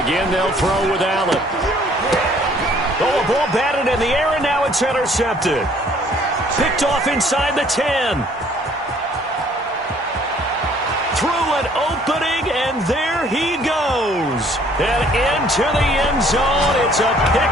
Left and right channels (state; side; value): normal; both; correlation 0.59